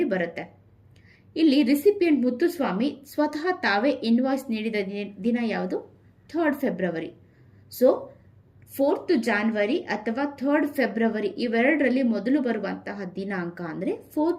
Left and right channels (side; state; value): both; identical; correlation 1.00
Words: ಬರುತ್ತೆ. ಇಲ್ಲಿ ರಿಸಿಪಿಯಂಟ್ ಮುತ್ತುಸ್ವಾಮಿ ಸ್ವತಃ ತಾವೇ ಇನ್ವಾಯ್ಸ್ ನೀಡಿದ ದಿನ ಯಾವುದು? 3rd February. So 4th January ಅಥವಾ 3rd ಫೆಬ್ರವರಿ ಇವೆರಡರಲ್ಲಿ ಮೊದಲು ಬರುವಂತಹ ದಿನಾಂಕ ಅಂದರೆ